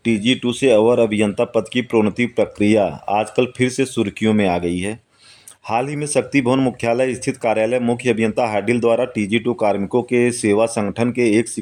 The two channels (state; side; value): identical; both; correlation 1.00